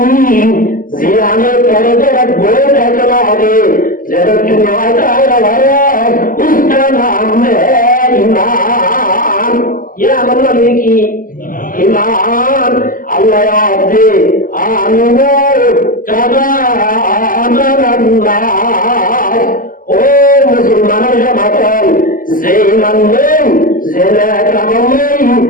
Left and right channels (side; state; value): right; late; 0.41 ms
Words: জিয়ানে করে দেব বই দেখলো হবে যেটা কি নয় তাই হবে उसका नाम है ईमान ইয়া मतलब কি ईमान अल्लाह आदे आमिनो कदा आमनाल्लाह ओ मुसलमानों जमातल যে ঈমান নেই জেলা কামাল নেই